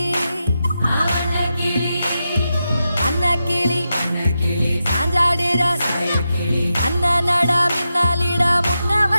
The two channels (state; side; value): inverted; both; correlation -0.88